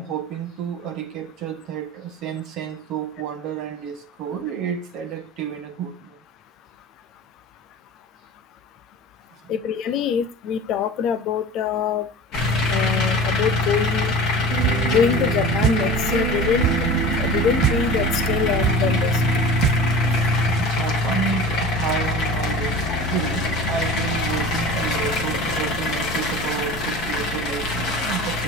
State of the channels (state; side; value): normal; both; correlation 0.36